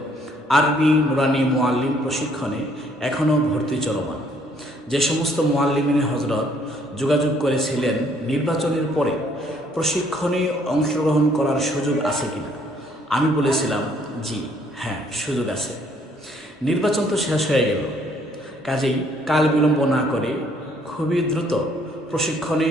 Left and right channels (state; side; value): normal; both; correlation 0.64